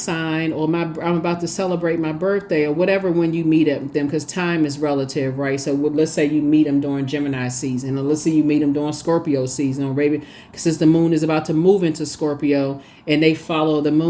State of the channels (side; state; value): both; identical; correlation 1.00